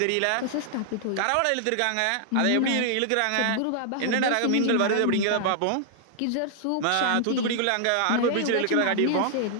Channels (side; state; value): both; different; correlation -0.01